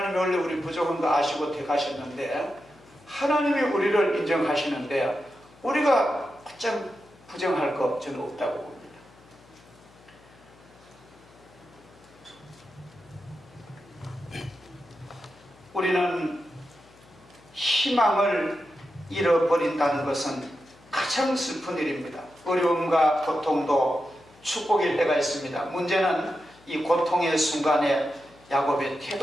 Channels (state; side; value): noise; left; hum, 26 dB below the sound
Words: 원래 우리 부족한 거 아시고 택하셨는데 하나님이 우리를 인정하시는데 우리가 어쩜 부정할 거 저는 없다고 봅니다. 우리는 희망을 잃어버린다는 것은 가장 슬픈 일입니다. 어려움과 고통도 축복일 때가 있습니다. 문제는 이 고통의 순간에 야곱의